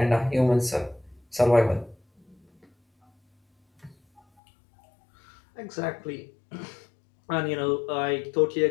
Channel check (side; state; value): right; drops out; at 4.2 s